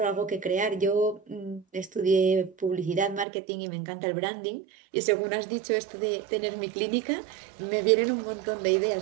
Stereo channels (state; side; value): drops out; left; at 3.2 s